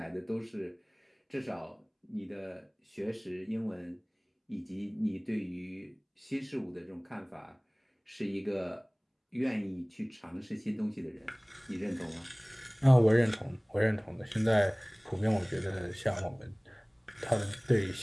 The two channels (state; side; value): identical; both; correlation 1.00